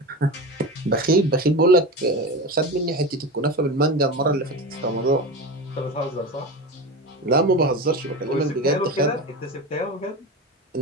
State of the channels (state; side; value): normal; both; correlation 0.25